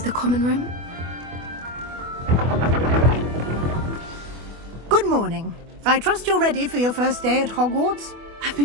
the common room. Good morning. I trust you're ready for your first day at Hogwarts? I've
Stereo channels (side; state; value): left; late; 24 ms